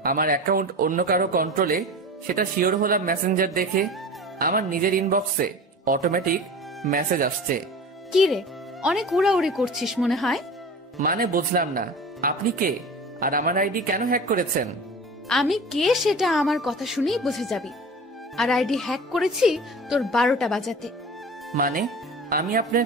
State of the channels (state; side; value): normal; both; correlation 0.35